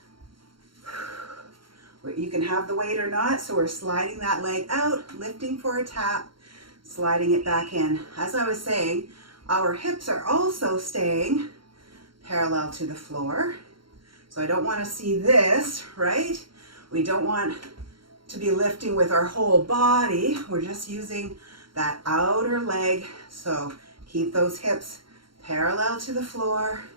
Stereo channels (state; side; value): late; left; 0.73 ms